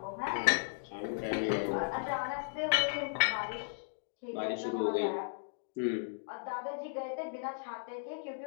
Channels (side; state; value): right; silent; digital silence